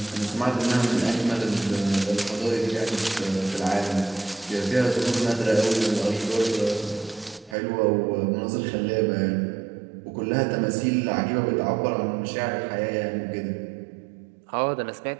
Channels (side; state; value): left; drops out; at 7.6 s